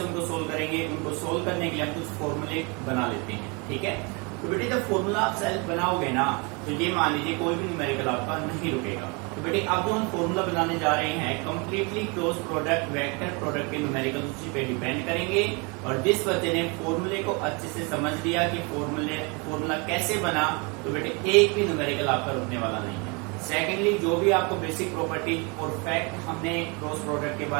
उनको सोल्व करेंगे, उनको सोल्व करने के लिए हम कुछ फॉर्मूले बना लेते हैं, ठीक है? तो बेटे जब फॉर्मूला आप सेल्फ बनाओगे ना, तो ये मान लीजिए कोई भी न्यूमेरिकल आपका नहीं रुकेगा. तो बेटे अब जो हम फॉर्मूला बनाने जा रहे हैं, completely cross product vector product के न्यूमेरिकल उसी पे डिपेंड करेंगे. और जिस बच्चे ने फॉर्मूले को अच्छे से समझ लिया कि फॉर्मूला कैसे बना, तो बेटे एक भी न्यूमेरिकल आपका रुकने वाला नहीं है. सेकेंडली, जो भी आपको बेसिक प्रॉपर्टी और फैक्ट हमने क्रॉस प्रोडक्ट के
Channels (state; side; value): quieter; left; 30.8 dB